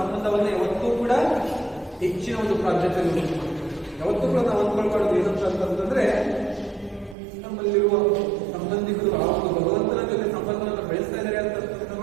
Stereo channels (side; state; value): left; drops out; at 7.2 s